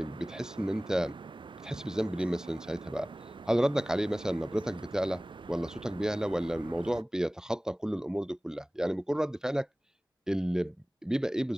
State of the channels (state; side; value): normal; both; correlation 0.98